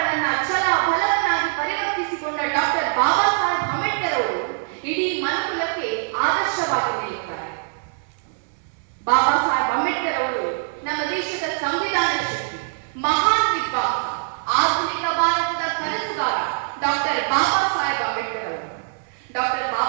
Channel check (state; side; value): silent; left; digital silence